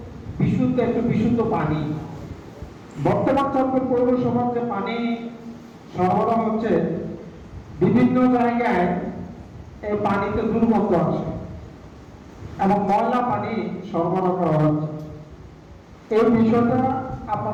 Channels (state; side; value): identical; both; correlation 1.00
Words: একটু বিশুদ্ধ পানি। বর্তমান চাঁদপুর পৌরসভার যে পানি সরবরাহ হচ্ছে, বিভিন্ন জায়গায় এই পানিতে দুর্গন্ধ আসে এবং ময়লা পানি সরবরাহ করা হচ্ছে। এই বিষয়টা